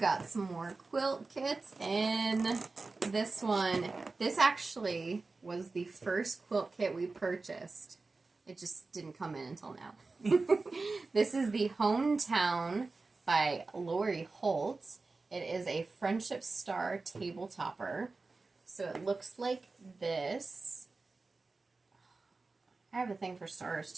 some more quilt kits, and this one, this actually was the first quilt kit we purchased. It just didn't come in until now. This is the Hometown by Lori Holt. It is a Friendship Star table topper. So it looks like this. I have a thing for stars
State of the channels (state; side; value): quieter; left; 3.7 dB